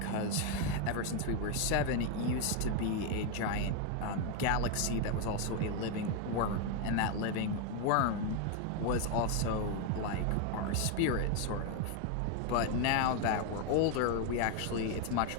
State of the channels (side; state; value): both; different; correlation 0.01